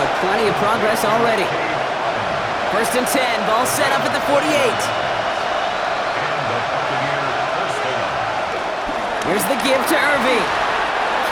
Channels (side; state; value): both; identical; correlation 1.00